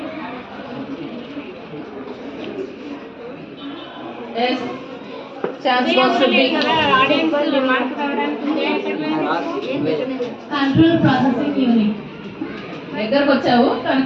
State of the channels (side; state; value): both; identical; correlation 1.00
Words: Yes. Chance goes to be. Audience mark రావడానికి కంట్రోల్ ప్రాసెసింగ్ యూనిట్. దగ్గరకు వచ్చావు కానీ